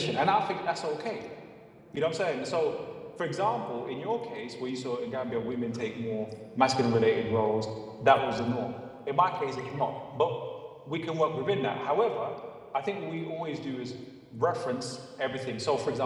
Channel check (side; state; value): both; identical; correlation 1.00